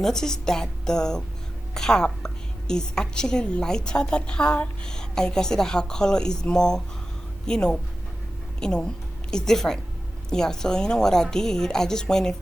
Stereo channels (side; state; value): both; normal; correlation 0.94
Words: that the cap is actually lighter than her, and you can see that her color is more, you know, it's different. Yeah, so you know what I did? I just went in